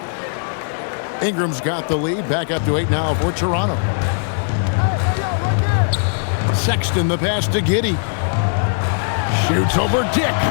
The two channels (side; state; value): right; silent; digital silence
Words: Ingram's got the lead, back up to 8 now for Toronto. Sexton the pass to Giddey. Shoots over Dick.